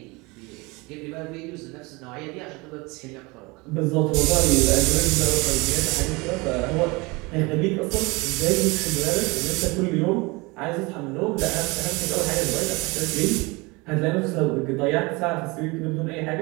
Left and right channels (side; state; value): left; quieter; 25.4 dB